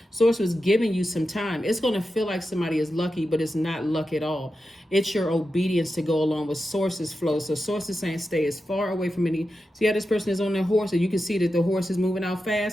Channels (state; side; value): normal; both; correlation 0.90